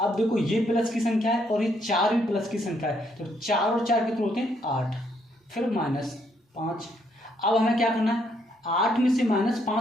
देखो, ये प्लस की संख्या है और ये 4 भी प्लस की संख्या है, तो 4 और 4 कितने होते हैं 8, फिर -5। अब हमें क्या करना है, 8 में से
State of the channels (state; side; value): normal; both; correlation 0.72